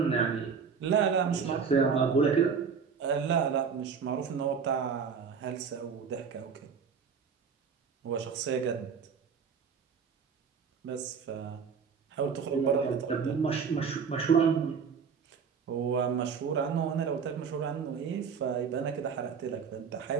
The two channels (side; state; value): left; quieter; 6.2 dB